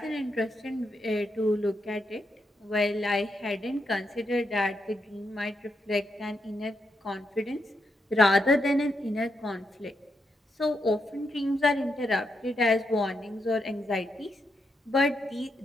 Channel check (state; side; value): normal; both; correlation 0.82